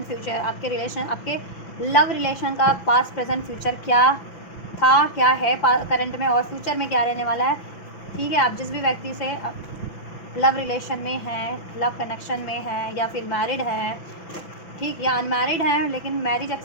फ्यूचर, आपके रिलेशन, आपके लव रिलेशन का पास्ट प्रेजेंट फ्यूचर क्या था, क्या है करंट में और फ्यूचर में क्या रहने वाला है। ठीक है, आप जिस भी व्यक्ति से लव रिलेशन में हैं, लव कनेक्शन में हैं या फिर मैरिड हैं, ठीक, या अनमैरिड हैं लेकिन मैरिज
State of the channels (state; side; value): late; right; 6.0 ms